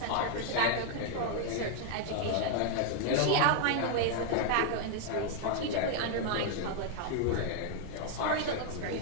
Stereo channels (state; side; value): different; both; correlation 0.00